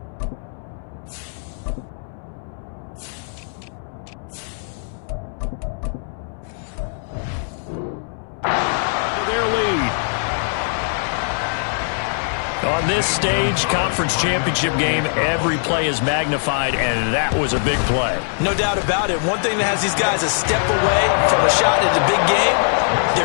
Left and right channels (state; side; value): silent; right; 64 dB below the other